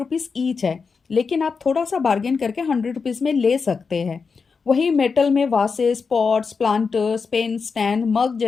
ईच है, लेकिन आप थोड़ा सा बार्गेन करके 100 रुपीज़ में ले सकते हैं। वही मेटल में vases, pots, planters, pen stand, mug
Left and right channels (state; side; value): quieter; right; 5.2 dB